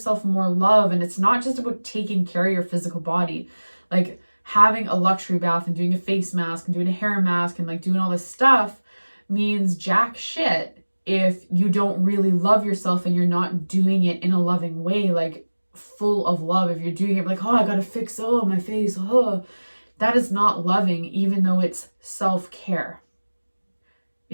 more love? And it's not just about taking care of your physical body, like having a luxury bath and doing a face mask and doing a hair mask and like doing all this stuff means jack shit if you don't really love yourself and you're not doing it in a loving way, like full of love. If you're doing it like, oh, I gotta fix my face, that is not loving, even though it's self-care.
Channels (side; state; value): both; inverted; correlation -1.00